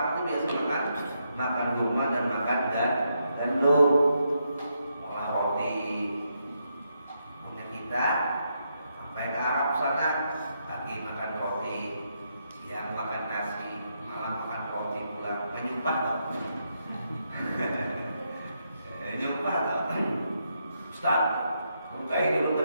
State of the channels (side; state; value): both; inverted; correlation -0.80